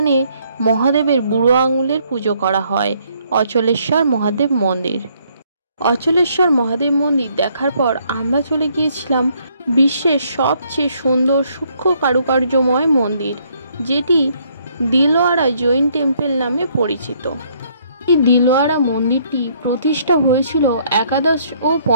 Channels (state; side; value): inverted; both; correlation -0.68